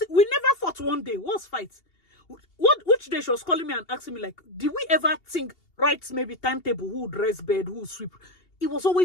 we never fought one day. What's fight? Which day she was calling me and asking me, like, did we ever think, right, maybe timetable, who would dress bed, who would sweep? It was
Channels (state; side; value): late; right; 2.8 ms